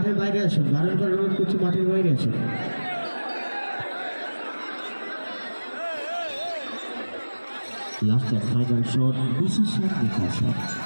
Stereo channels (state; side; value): inverted; both; correlation -1.00